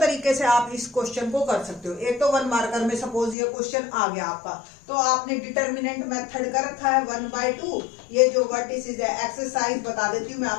तरीके से आप इस क्वेश्चन को कर सकते हो। एक तो 1 मार्कर में सपोज ये क्वेश्चन आ गया आपका, तो आपने डिटर्मिनेंट मेथड कर रखा है 1/2। ये जो वर्टिसेस है, एक्सरसाइज बता देती हूँ मैं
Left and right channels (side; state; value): right; drops out; at 3.4 s